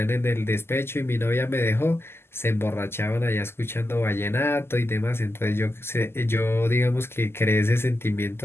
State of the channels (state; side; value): late; right; 0.12 ms